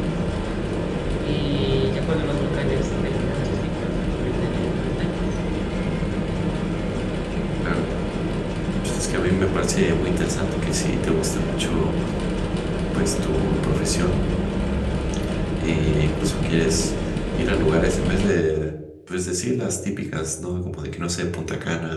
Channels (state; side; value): identical; both; correlation 1.00